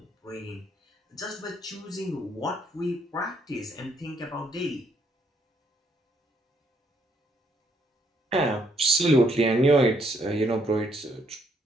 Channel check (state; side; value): normal; both; correlation 0.71